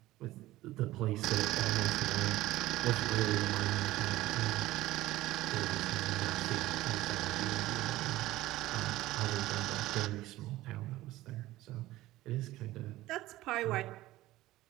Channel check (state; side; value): quieter; left; 16.7 dB